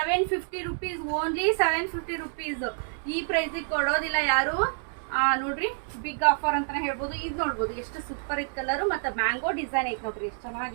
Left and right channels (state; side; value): silent; left; 59 dB below the other